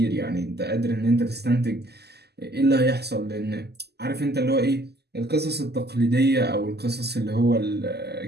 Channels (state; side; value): late; left; 0.47 ms